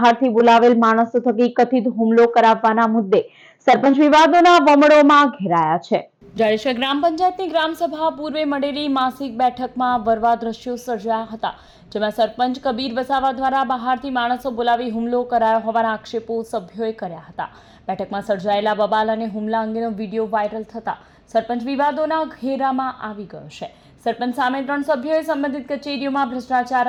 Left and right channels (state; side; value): identical; both; correlation 1.00